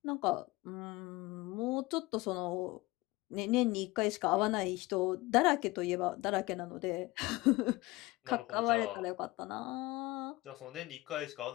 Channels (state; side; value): quieter; right; 20.9 dB